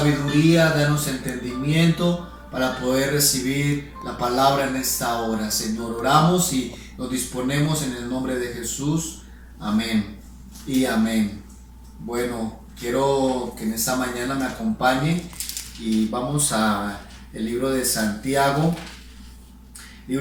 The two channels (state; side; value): identical; both; correlation 1.00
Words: danos entendimiento para poder recibir la palabra en esta hora, Señor. Oramos y nos disponemos en el nombre de Jesús. Amén y amén. Bueno, quiero que en esta mañana me acompañe y vamos a el libro de Santiago.